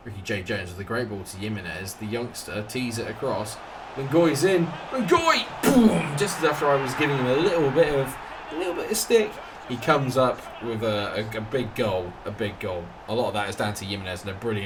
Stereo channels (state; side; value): identical; both; correlation 1.00